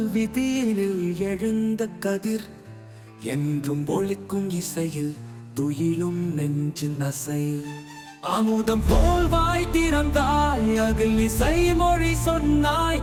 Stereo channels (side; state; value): both; identical; correlation 1.00